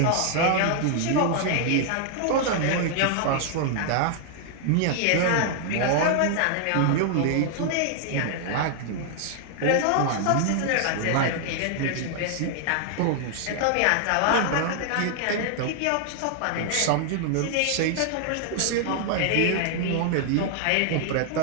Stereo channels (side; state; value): both; different; correlation 0.00